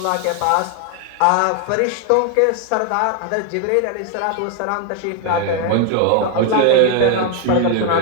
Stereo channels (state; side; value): different; both; correlation 0.01